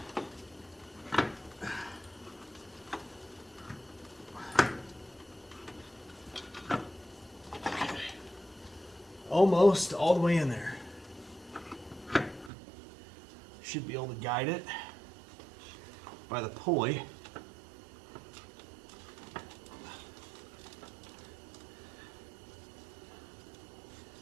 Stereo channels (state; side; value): drops out; left; at 12.5 s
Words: Almost all the way in there. Should be able to guide it by the pulley.